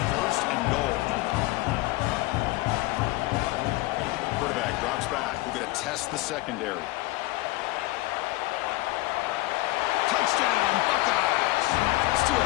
first and goal. Quarterback drops back. We're going to test the secondary. Touchdown, Buckeyes! Still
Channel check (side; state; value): right; quieter; 19.7 dB